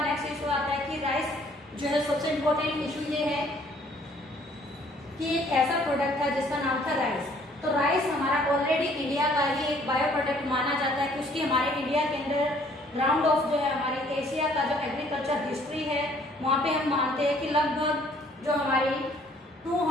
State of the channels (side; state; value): both; normal; correlation 0.60